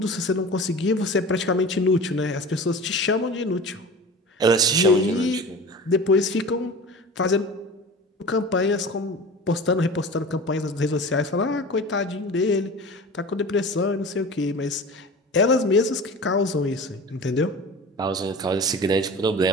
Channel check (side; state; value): both; normal; correlation 0.35